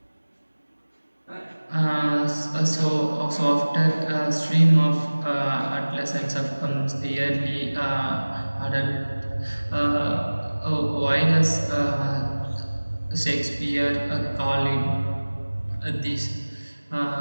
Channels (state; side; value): inverted; both; correlation -1.00